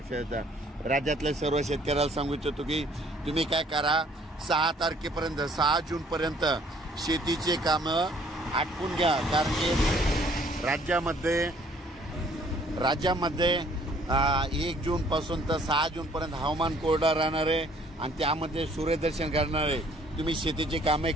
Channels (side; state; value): both; normal; correlation 0.60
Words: येतात। राज्यातल्या सर्व शेतकऱ्याला सांगू इच्छितो की तुम्ही काय करा, 6 तारखेपर्यंत 6 जून पर्यंत शेतीचे कामं आटपून घ्या, कारण की राज्यामध्ये 1 जून पासून तर 6 जून पर्यंत हवामान कोरडं राहणार आहे आणि त्यामध्ये सूर्यदर्शन घडणार आहे। तुम्ही शेतीची कामे